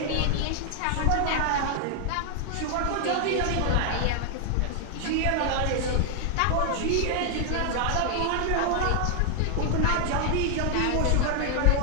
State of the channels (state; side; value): different; both; correlation 0.00